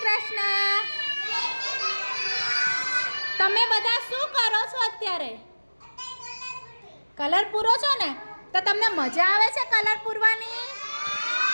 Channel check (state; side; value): inverted; both; correlation -1.00